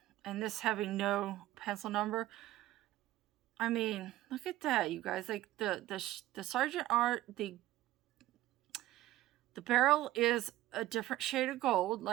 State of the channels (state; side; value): quieter; left; 15.5 dB